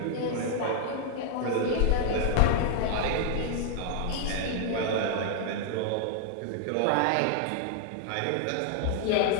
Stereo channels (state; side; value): different; both; correlation 0.00